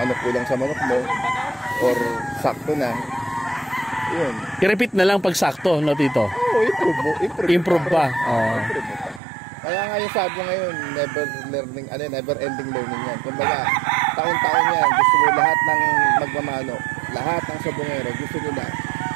kulang sa manok mo or sakto na. Yun. I-repeat na lang pag sakto, no, Tito? Improve pa. Improve pa. Kaya nga yung sabo ngayon, never ending learning yan. Kumbaga, taon-taon yan, gusto mo lahat ng magmamano, lahat ng sabongero, gusto nila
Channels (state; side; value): drops out; left; at 9.2 s